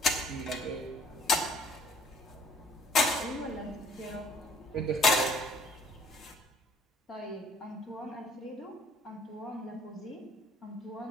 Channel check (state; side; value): normal; both; correlation 0.59